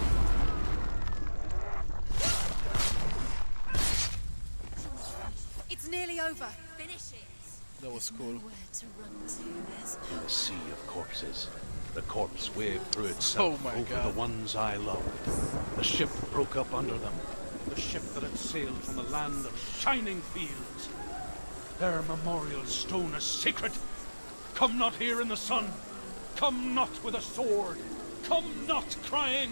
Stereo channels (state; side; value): inverted; both; correlation -1.00